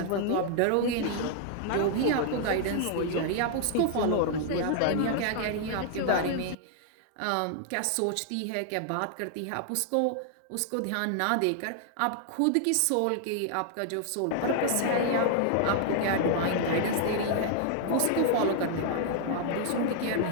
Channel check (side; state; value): both; different; correlation 0.00